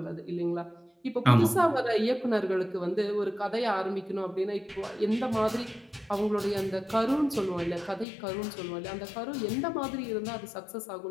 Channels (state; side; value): drops out; right; at 8.1 s